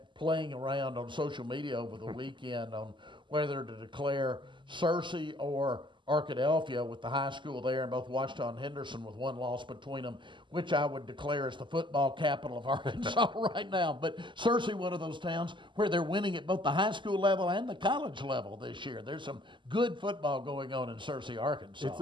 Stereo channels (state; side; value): late; left; 0.24 ms